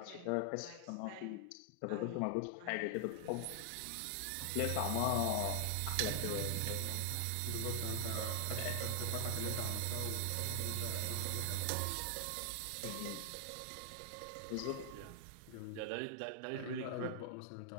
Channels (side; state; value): both; different; correlation 0.00